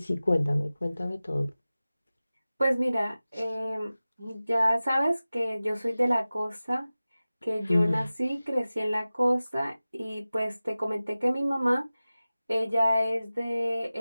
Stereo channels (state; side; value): inverted; both; correlation -0.96